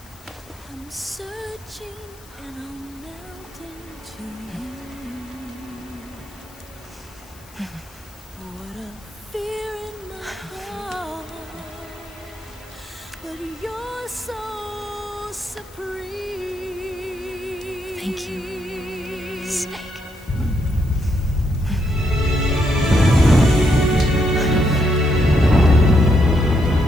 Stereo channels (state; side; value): noise; left; hiss, 25 dB below the sound